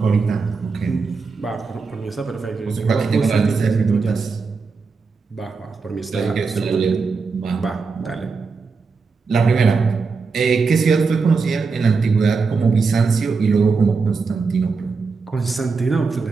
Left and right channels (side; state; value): left; quieter; 4.7 dB